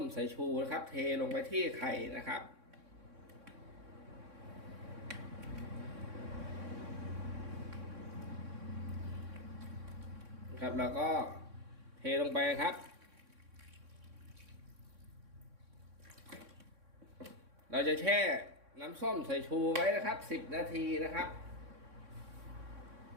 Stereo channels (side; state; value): left; late; 3.6 ms